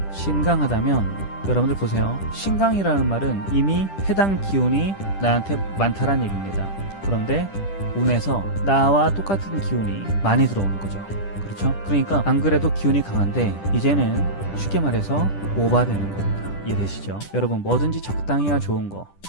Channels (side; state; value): right; late; 10 ms